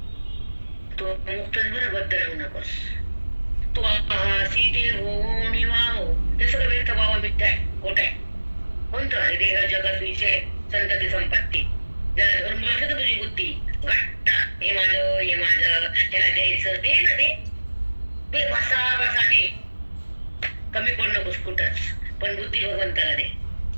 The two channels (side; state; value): both; inverted; correlation -1.00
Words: तो मुक्तच बरं, बद्ध राहू नकोस. तू आहासी ते हो निवाहो, ते सगळं व्यर्थ व्हावं, मिथ्या आहे, खोट आहे. कोणतं आहे? देह जगत विषय संतती संपत्ती. जरा धरून बसलं तर तुझी बुद्धी घट्ट, हे माझं त्याला द्यायचं, दे ना, ते बसा दे. कमी पड नकोस कुठंच, पण बुद्धी भगवंताला दे.